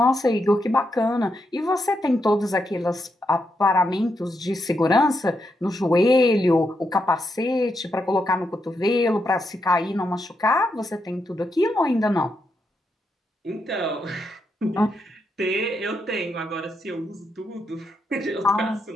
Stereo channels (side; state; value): both; normal; correlation 0.82